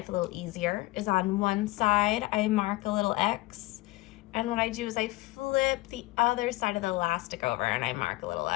a little easier is on one side I mark a little X, and what I do is I flip the other side of the elastic over and I mark a little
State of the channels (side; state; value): right; quieter; 20.3 dB